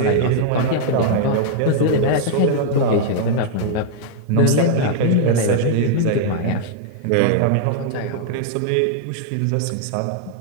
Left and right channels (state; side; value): different; both; correlation -0.01